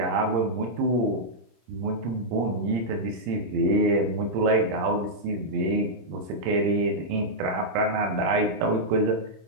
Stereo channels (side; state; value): left; late; 26 ms